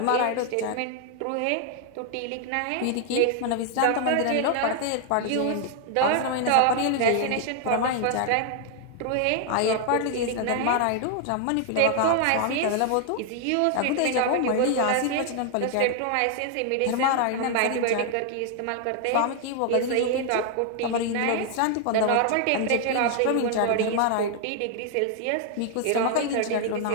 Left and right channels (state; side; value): different; both; correlation 0.00